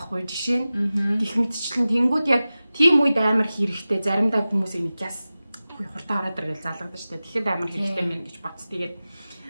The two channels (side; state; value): both; inverted; correlation -0.96